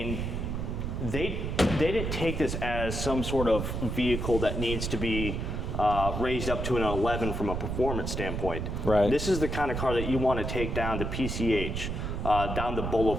they didn't take this as some sort of vehicle that needs to be raised up to an 11 from a performance standpoint. Right. This is the kind of car that you want to take down to PCH, down the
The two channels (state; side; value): noise; right; rumble, 3 dB below the sound